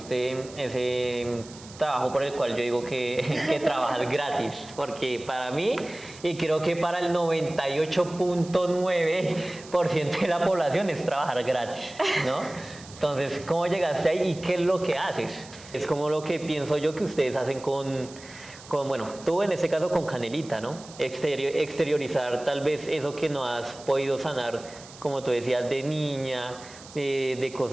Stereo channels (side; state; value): right; noise; hiss, 19 dB below the sound